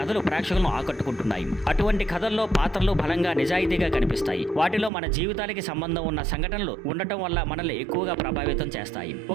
ప్రేక్షకులను ఆకట్టుకుంటున్నాయి. అటువంటి కథల్లో పాత్రలు బలంగా నిజాయితీగా కనిపిస్తాయి. వాటిలో మన జీవితాలకి సంబంధం ఉన్న సంఘటనలు ఉండటం వల్ల మనల్ని ఎక్కువగా ప్రభావితం చేస్తాయి.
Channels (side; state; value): left; drops out; at 4.9 s